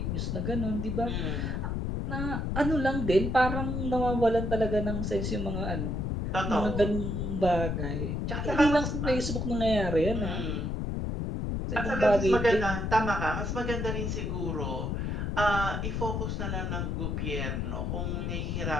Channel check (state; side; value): noise; left; rumble, 1 dB below the sound